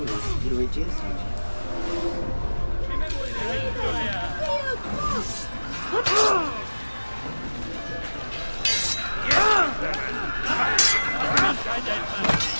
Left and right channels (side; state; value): both; inverted; correlation -1.00